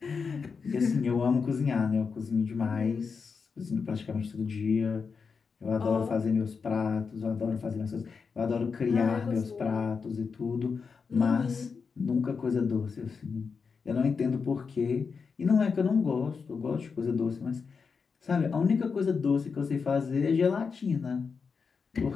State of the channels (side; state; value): right; quieter; 5.4 dB